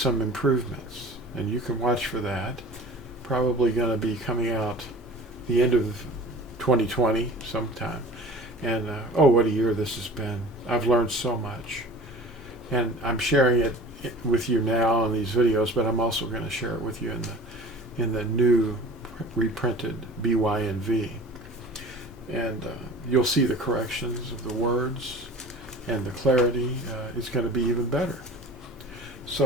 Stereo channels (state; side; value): normal; both; correlation 0.41